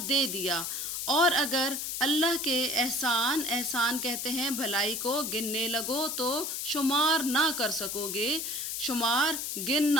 दिया। और अगर अल्लाह के एहसान कहते हैं भलाई को, गिनने लगो तो शुमार ना कर सकोगे। शुमार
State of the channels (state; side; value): noise; left; hiss, 3 dB below the sound